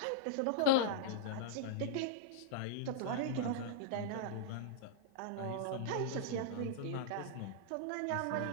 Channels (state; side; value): different; both; correlation -0.02